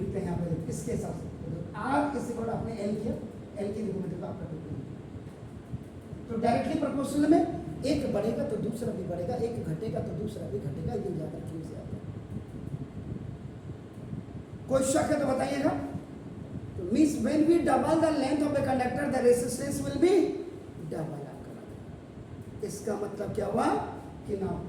हैं यहाँ पे देखो इसके हिसाब से, R इज इक्वल टू आपने L किया, L की देखो मतलब आपका 2, तो डायरेक्टली प्रोपोर्शनल में एक बढ़ेगा तो दूसरा भी बढ़ेगा, एक घटेगा तो दूसरा भी घटेगा, ये ज्यादा क्यों से आता है? कोई शक है तो बताइएगा। तो means when we double the length of the conductor the resistance will be double आपका। इसका मतलब क्या हुआ कि ना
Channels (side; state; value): both; identical; correlation 1.00